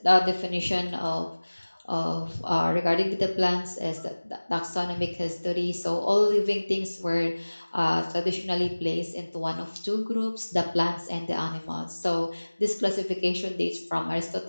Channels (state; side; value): inverted; both; correlation -1.00